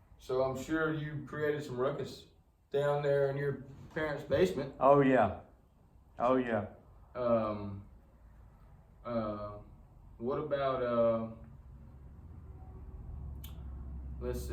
I'm sure you created some ruckus down there in your parents' basement. Oh yeah. Oh yeah. What about let's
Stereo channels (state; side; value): identical; both; correlation 1.00